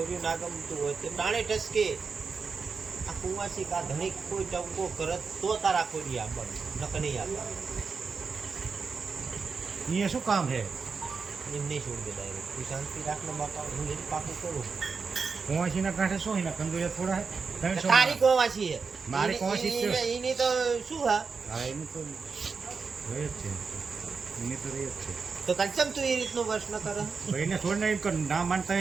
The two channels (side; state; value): left; quieter; 5.0 dB